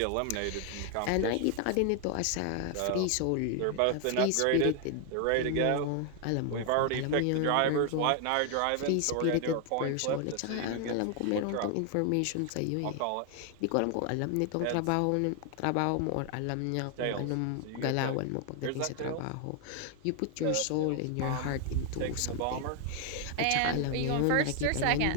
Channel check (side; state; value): both; different; correlation 0.00